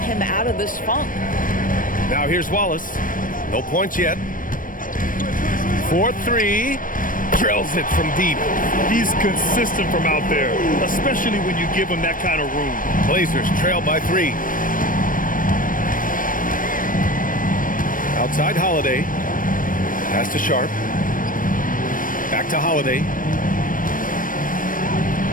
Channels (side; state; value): right; late; 0.40 ms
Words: out of this funk. Now here's Wallace. No points yet. 4-3. Drills it from deep. He's consistent from out there, especially when you give him that kind of room. Blazers trail by 3. Outside Holiday. Pass to Sharp. Back to Holiday.